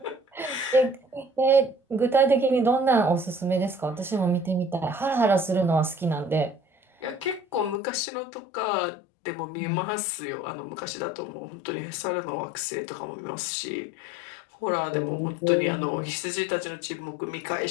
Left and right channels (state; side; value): drops out; right; at 7.8 s